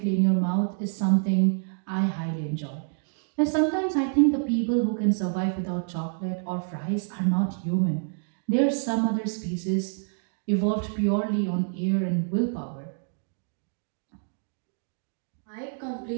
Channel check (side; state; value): left; silent; 60 dB below the other